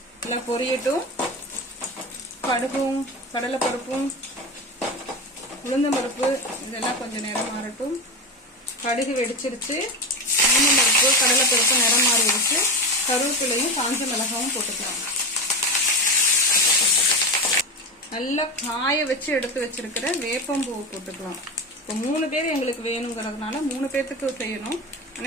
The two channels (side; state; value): both; normal; correlation 0.21